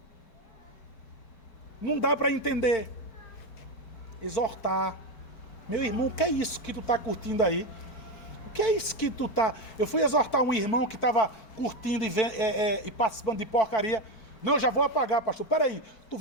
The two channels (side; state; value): right; late; 4.7 ms